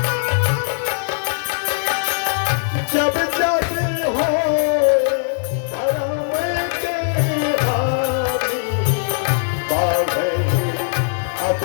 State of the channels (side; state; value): right; silent; digital silence